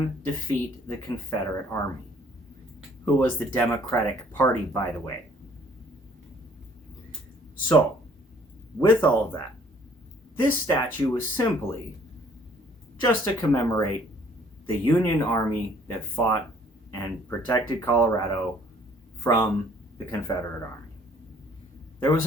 defeat the Confederate Army, who was the Democratic Party, by the way. So, with all of that, this statue was simply just to commemorate the Union Army that fought and protected Colorado from the Confederate Army. There was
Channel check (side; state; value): both; normal; correlation 0.59